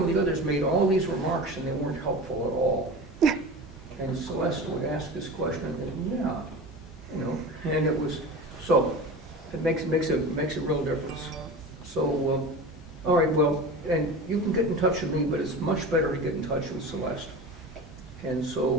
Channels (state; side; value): normal; both; correlation 0.32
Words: of the others made all these remarks, and they weren't helpful at all. And Celeste would ask this question, and yeah, and it was, so, it makes a real difference. So, all right, well, and you can get in touch with me, but it's much better to get in touch with Celeste. And